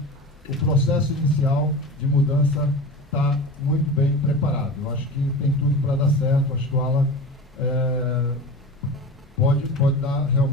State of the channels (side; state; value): both; normal; correlation 0.31